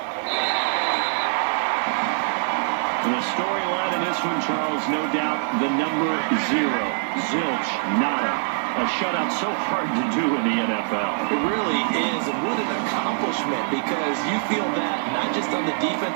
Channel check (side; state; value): left; silent; 63 dB below the other